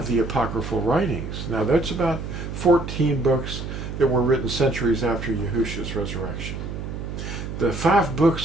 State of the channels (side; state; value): right; noise; hum, 7 dB below the sound